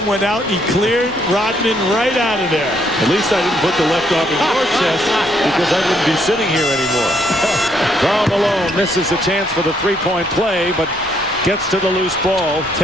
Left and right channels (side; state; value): both; normal; correlation 0.71